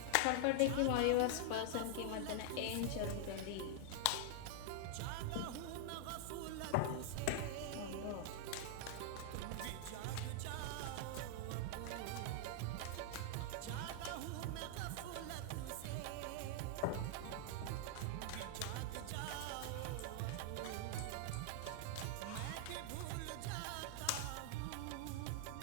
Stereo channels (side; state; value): both; different; correlation -0.01